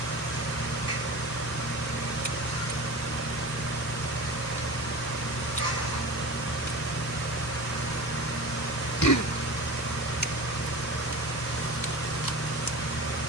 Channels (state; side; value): normal; both; correlation 0.32